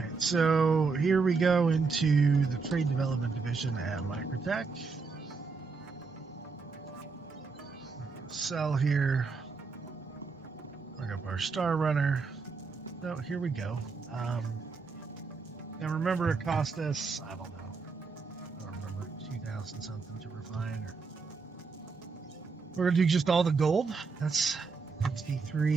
so here we go into the Trade Development Division at Microtech. Sell here. Bring up our Star Runner. So here we go. And remember, it cost us, I don't remember, 2,000 something to refine. We're going to do just all the gold. That's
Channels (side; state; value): left; quieter; 4.7 dB